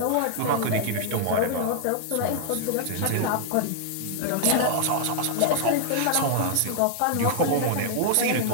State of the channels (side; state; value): both; different; correlation -0.01